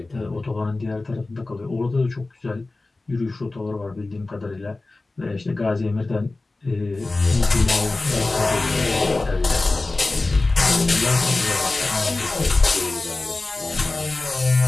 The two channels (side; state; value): right; quieter; 3.2 dB